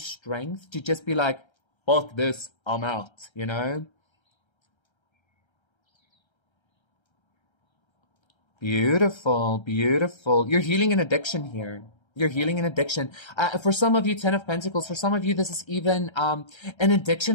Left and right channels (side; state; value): right; late; 1.3 ms